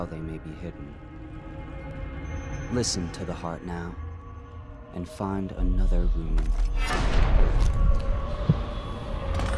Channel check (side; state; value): both; identical; correlation 1.00